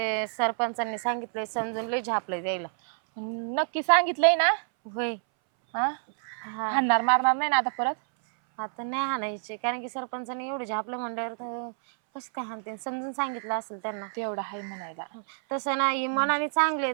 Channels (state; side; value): silent; left; 59 dB below the other